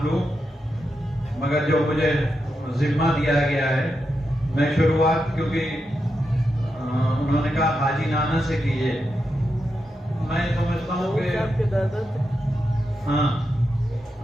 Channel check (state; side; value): normal; both; correlation 0.86